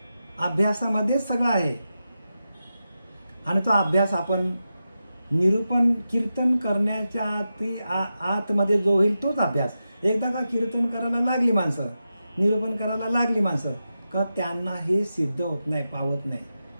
अभ्यासामध्येच सगळं आहे. आणि तो अभ्यास आपण निरूपण कीर्तन करण्याच्या आतमध्ये जो होईल तोच अभ्यास. एकदा का कीर्तन करायला लागली माणसं, निरूपण करायला लागली माणसं, का त्यांना हे सिद्ध होत नाही, पावत नाही.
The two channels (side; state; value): both; inverted; correlation -0.90